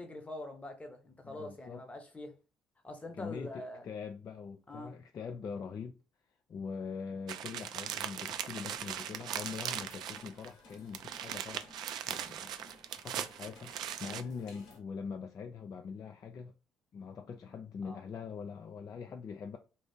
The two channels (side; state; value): both; normal; correlation 0.54